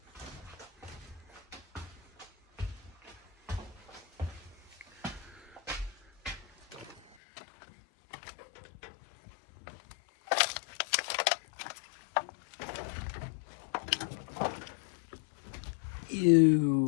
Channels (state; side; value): drops out; right; at 7.0 s